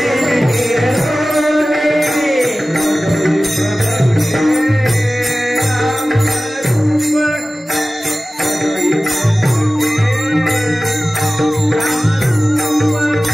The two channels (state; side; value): normal; both; correlation 0.96